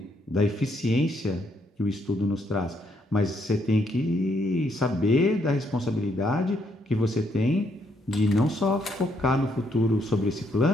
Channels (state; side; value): normal; both; correlation 0.73